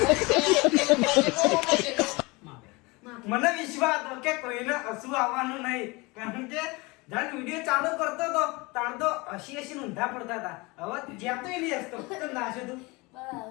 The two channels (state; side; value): quieter; right; 25.0 dB